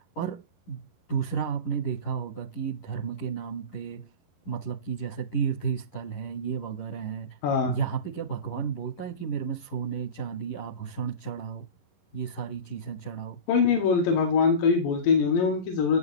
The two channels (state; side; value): late; right; 11 ms